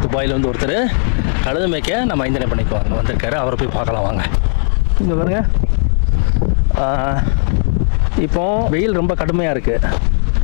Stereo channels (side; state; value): right; silent; 65 dB below the other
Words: துபாயில் வந்து ஒருத்தர் கழுது மேய்க்க நம்ம அஞ்சனை பண்ணிக்க வந்திருக்காரு. அவரை போய் பார்க்கலாம் வாங்க. இங்கே பாருங்க, இப்போ வெயில் ரொம்ப கடுமையாக இருக்குது.